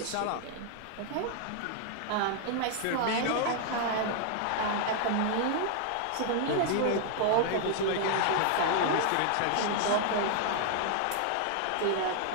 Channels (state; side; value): different; both; correlation 0.00